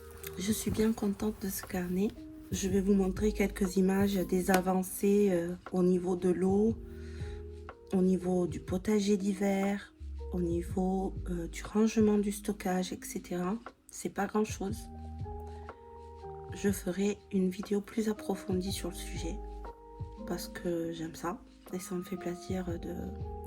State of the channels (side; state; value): both; identical; correlation 1.00